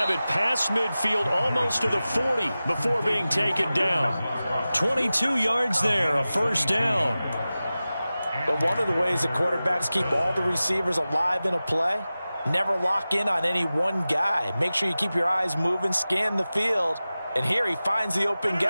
it past midfield almost to the 40 before being taken down. 22 yards there, a first down. But one of the ways the quarterbacks keep all the receivers alive in a play, never lock in on any one guy. Make sure you keep your eyes moving, scan the field. And here he finds the open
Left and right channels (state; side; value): inverted; both; correlation -0.96